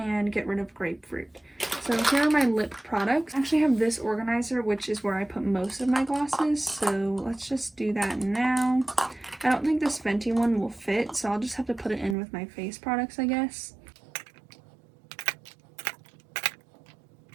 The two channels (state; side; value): drops out; left; at 12.2 s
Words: get rid of Grapefruit. So here are my lip products. I actually have this organizer, which is where I put most of my glosses. So let's just do that now. I don't think this Fenty one will fit, so I'll just have to put it in with my face products, I guess.